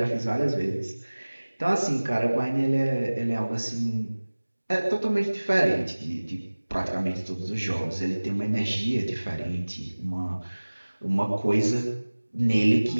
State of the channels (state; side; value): inverted; both; correlation -1.00